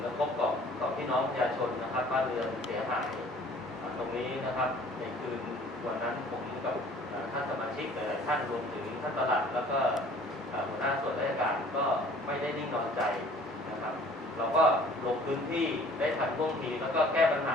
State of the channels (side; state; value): both; normal; correlation 0.52